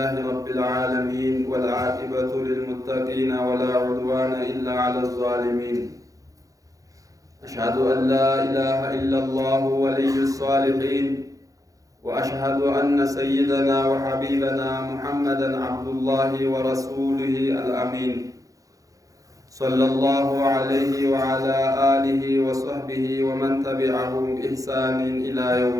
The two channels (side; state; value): left; late; 0.17 ms